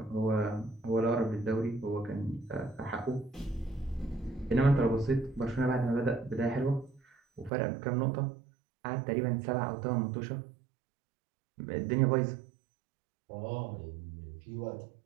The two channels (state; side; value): drops out; left; at 7.5 s